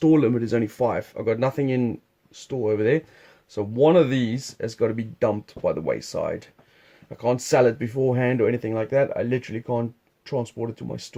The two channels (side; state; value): both; identical; correlation 1.00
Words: limit is only 5. I've got nothing in store over there. So one of these has got to be dumped by the wayside. I can't sell it beforehand or anything like that. I literally can't transport it to my